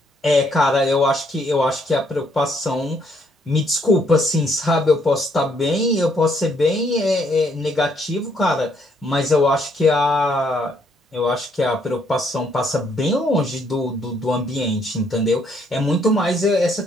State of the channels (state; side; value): normal; both; correlation 0.70